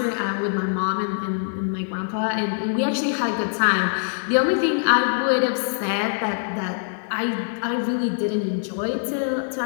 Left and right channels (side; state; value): right; silent; 63 dB below the other